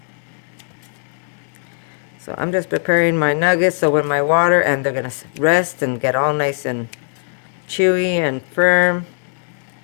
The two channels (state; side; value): silent; right; digital silence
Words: So I'm just preparing my nuggets so when my water, and they're going to rest and get all nice and chewy and firm.